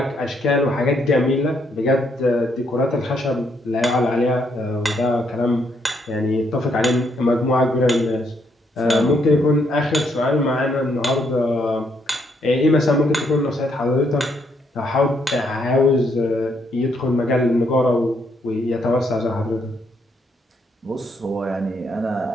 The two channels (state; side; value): normal; both; correlation 0.74